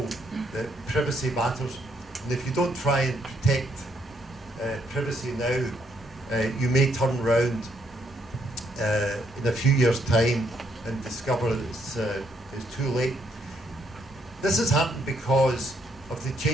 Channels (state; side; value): normal; both; correlation 0.73